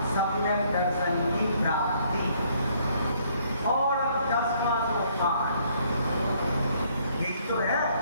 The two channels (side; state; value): both; inverted; correlation -0.66